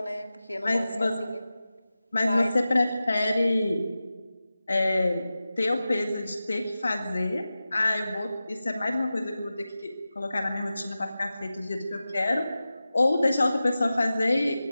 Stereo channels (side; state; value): both; inverted; correlation -0.94